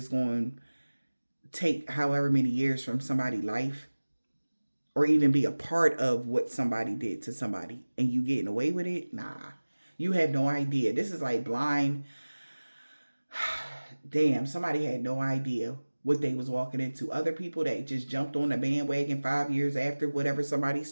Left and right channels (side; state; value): both; inverted; correlation -1.00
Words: going to take however many years from somebody's life, or even be a part of what somebody did to somebody, and you getting away with it, nah. You have no idea. This is like blind. Damn, somebody had no idea what they was walking into. Other people that just jumped on the bandwagon 5 years after whatever somebody